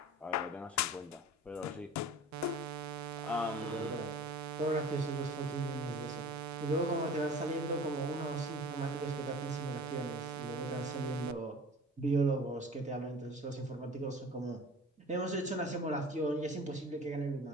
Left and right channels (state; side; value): normal; both; correlation 0.42